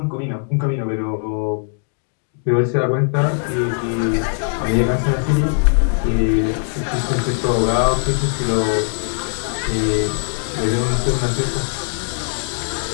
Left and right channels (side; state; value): right; silent; 58 dB below the other